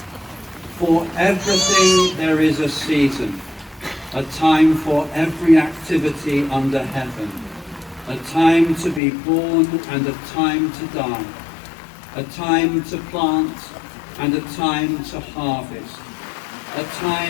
For everything there is a season, a time for every activity under heaven, a time to be born and a time to die, a time to plant and a time to harvest, a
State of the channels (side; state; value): right; drops out; at 9.0 s